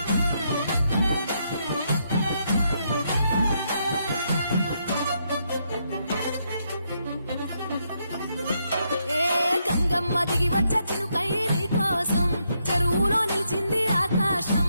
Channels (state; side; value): inverted; both; correlation -0.77